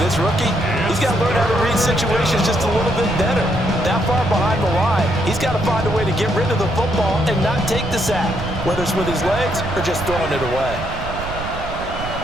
rookie. He's got to learn how to read situations just a little bit better. That far behind the line, he's got to find a way to get rid of the football and not take the sack, whether it's with his legs or just throwing it away.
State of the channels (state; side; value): noise; right; rumble, 8 dB below the sound